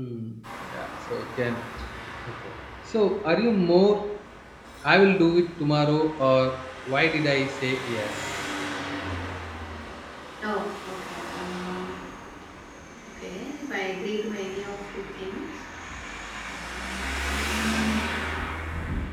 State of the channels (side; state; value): both; identical; correlation 1.00